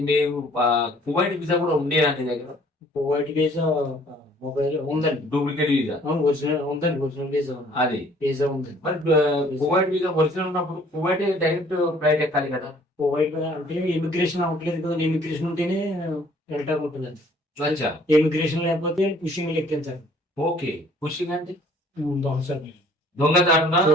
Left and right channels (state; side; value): normal; both; correlation 0.57